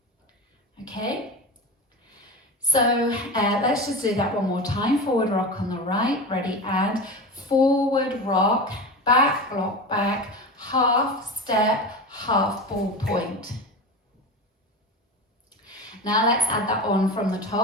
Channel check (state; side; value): normal; both; correlation 0.26